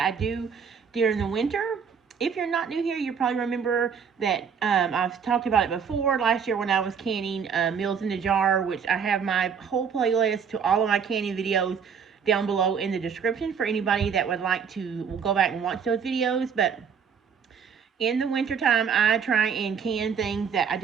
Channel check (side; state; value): left; quieter; 6.8 dB